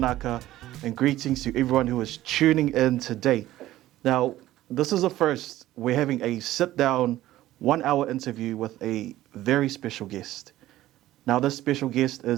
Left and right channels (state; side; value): quieter; left; 14.9 dB